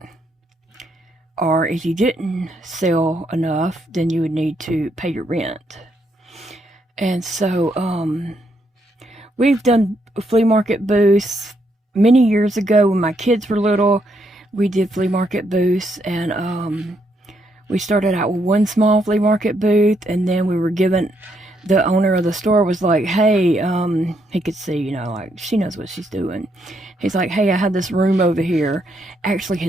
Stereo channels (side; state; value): both; normal; correlation 0.76